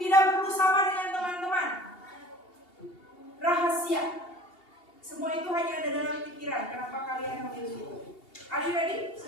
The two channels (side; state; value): right; late; 2.8 ms